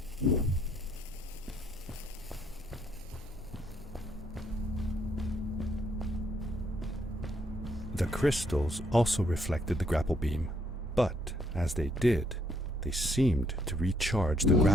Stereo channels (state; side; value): normal; both; correlation 0.71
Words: The crystals also reflected the grapple beam, but as they did, they seemed to recharge the